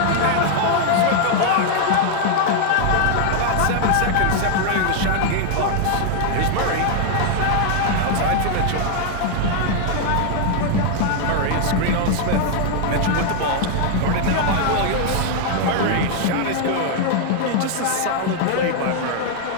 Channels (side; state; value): both; different; correlation 0.00